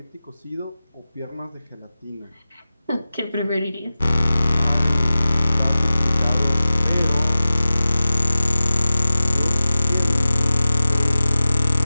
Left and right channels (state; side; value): inverted; both; correlation -0.95